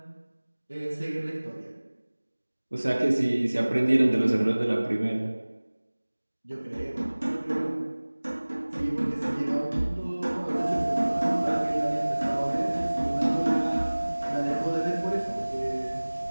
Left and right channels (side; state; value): both; inverted; correlation -1.00